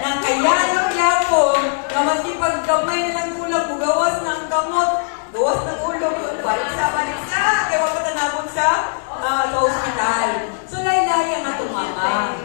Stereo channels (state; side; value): silent; right; digital silence